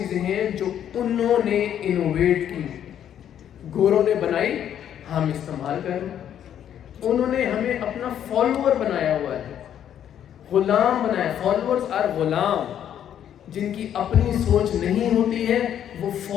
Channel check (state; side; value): quieter; right; 9.9 dB